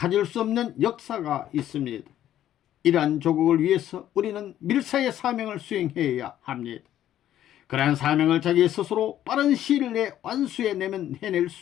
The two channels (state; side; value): quieter; right; 11.9 dB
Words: 수 없는 역사가 있습니다. 이러한 조국을 위해서 우리는 밀사의 사명을 수행해야 합니다. 그러한 사명을 자기 스스로 빠른 시일 내에 완수해내면